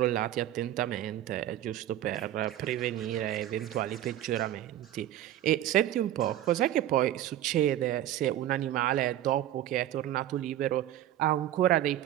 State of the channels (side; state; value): left; quieter; 12.8 dB